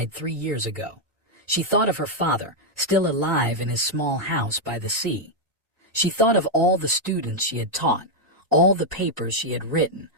3 years ago. She thought of her father, still alive in his small house by the sea. She thought of all the students she had taught, all the papers she had written,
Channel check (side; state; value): both; normal; correlation -0.01